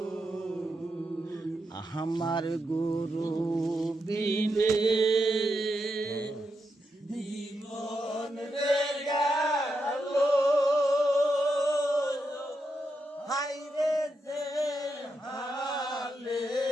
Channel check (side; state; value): both; normal; correlation 0.84